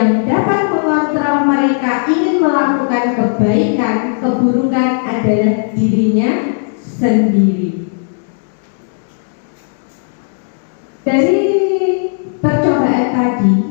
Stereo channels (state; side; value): silent; right; 64 dB below the other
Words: dapat mengontrol mereka ingin melakukan kebaikan, keburukan adalah dirinya sendiri. Dari percobaan tadi,